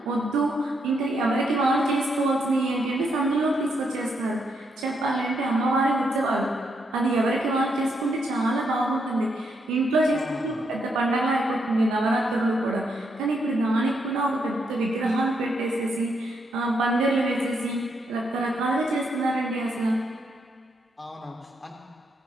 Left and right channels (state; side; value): normal; both; correlation 0.78